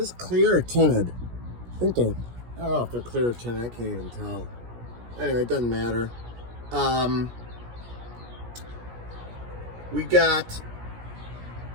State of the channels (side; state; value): left; late; 17 ms